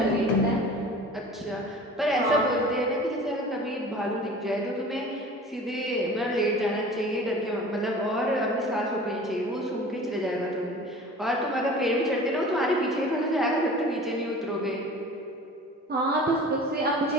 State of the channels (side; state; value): both; normal; correlation 0.41